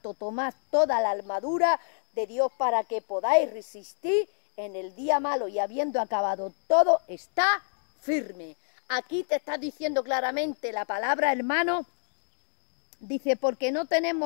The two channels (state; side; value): silent; right; digital silence